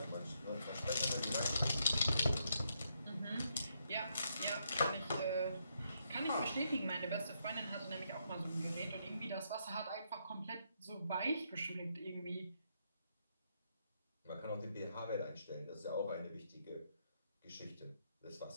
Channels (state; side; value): inverted; both; correlation -0.77